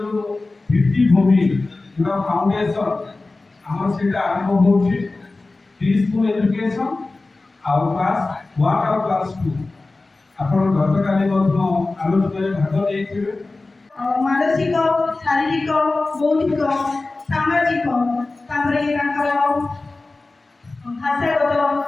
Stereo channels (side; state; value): right; quieter; 3.3 dB